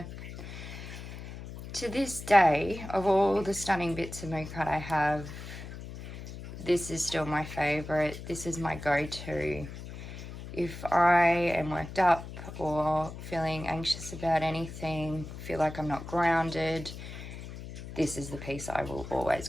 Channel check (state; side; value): noise; left; hum, 11 dB below the sound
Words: To this day, of all the stunning bits of moo kite I have, this is still my favorite. This is my go-to. If I am worked up or feeling anxious about anything, feel like I'm not grounded, this is the piece I will always